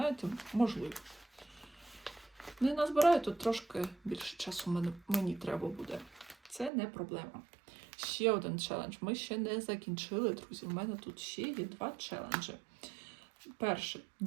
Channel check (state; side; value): drops out; left; at 6.7 s